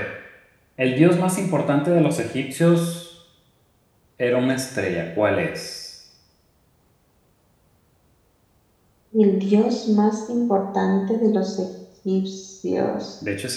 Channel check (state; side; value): identical; both; correlation 1.00